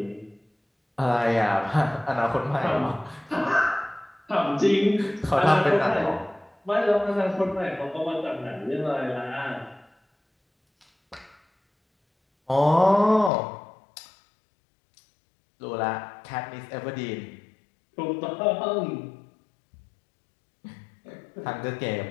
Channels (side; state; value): right; drops out; at 13.3 s